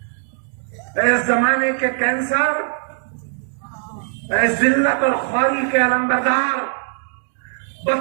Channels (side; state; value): left; silent; 63 dB below the other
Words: इस जमाने के कैंसर, जिल्लत और ख्वारी के अलंबरदार,